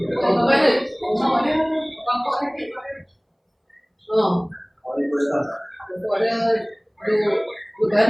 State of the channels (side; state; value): both; identical; correlation 1.00